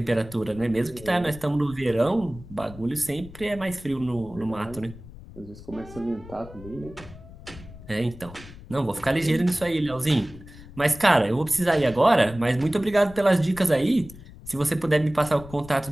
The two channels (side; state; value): left; noise; rumble, 17 dB below the sound